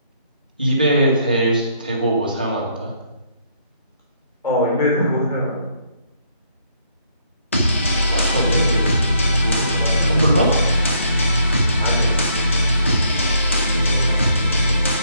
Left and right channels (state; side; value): inverted; both; correlation -0.70